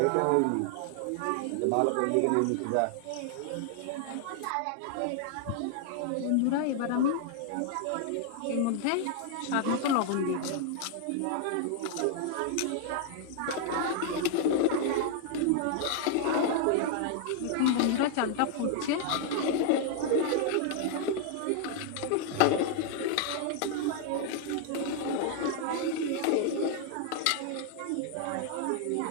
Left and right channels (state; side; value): different; both; correlation 0.00